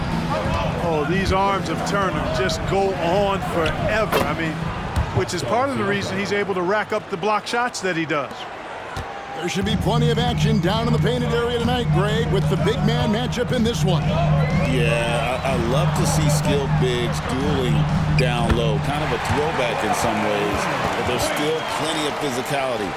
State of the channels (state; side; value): identical; both; correlation 1.00